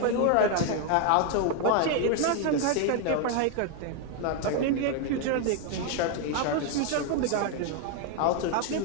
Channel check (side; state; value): both; different; correlation 0.01